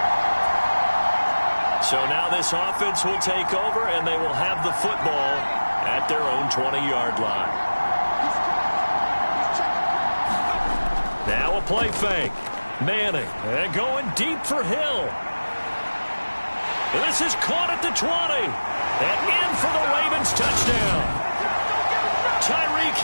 So now this offense will take over, and they will have the football at their own 20-yard line. Now a play fake. Manning, and going deep for Hill. This is caught at the 20. And in for the Ravens touchdown. Tyreek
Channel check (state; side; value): inverted; both; correlation -1.00